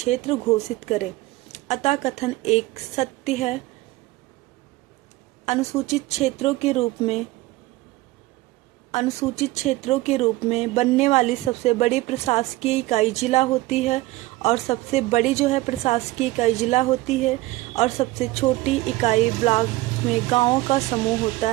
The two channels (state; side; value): quieter; left; 19.0 dB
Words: घोषित करे। अतः कथन 1 सत्य है। अनुसूचित क्षेत्रों के रूप में बनने वाली सबसे बड़ी प्रशासकीय इकाई जिला होती है और सबसे बड़ी प्रशासकीय इकाई जिला होती है और सबसे छोटी इकाई ब्लॉक में गांवों का समूह होता